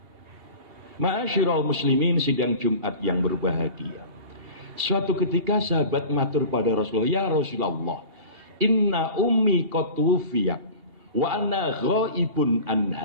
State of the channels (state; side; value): late; left; 2.8 ms